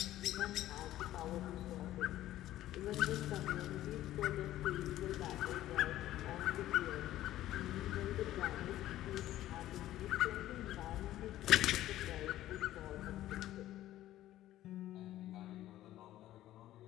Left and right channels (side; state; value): right; quieter; 14.0 dB